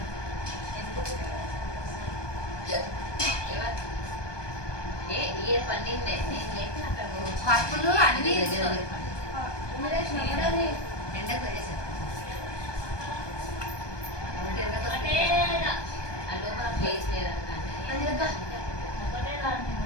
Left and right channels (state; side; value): late; right; 1.2 ms